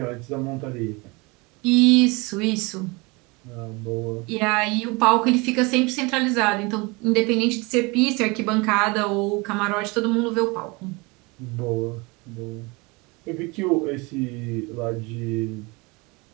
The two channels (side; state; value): left; quieter; 26.4 dB